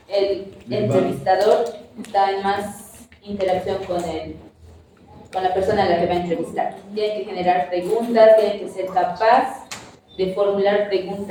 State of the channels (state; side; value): identical; both; correlation 1.00